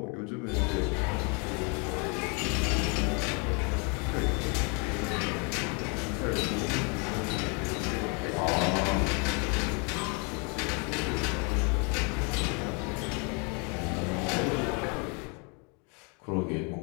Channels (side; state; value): right; quieter; 34.1 dB